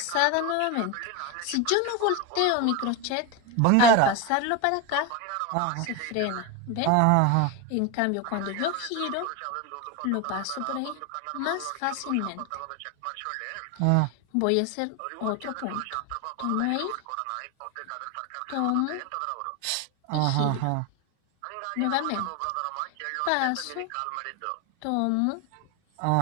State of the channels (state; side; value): different; both; correlation 0.02